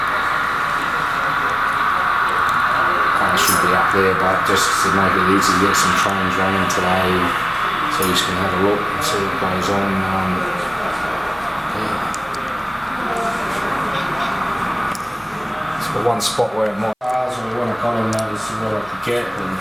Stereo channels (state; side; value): identical; both; correlation 1.00